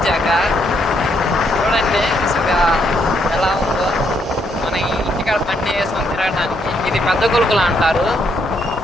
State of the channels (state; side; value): normal; both; correlation 0.74